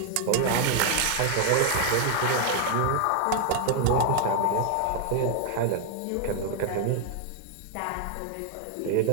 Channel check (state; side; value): different; both; correlation 0.00